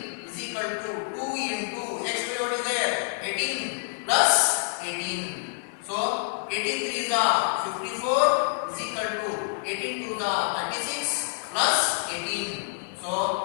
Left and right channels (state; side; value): silent; right; digital silence